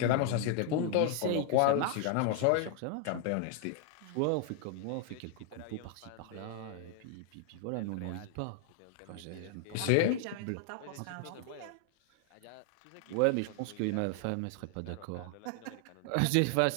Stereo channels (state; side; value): different; both; correlation 0.00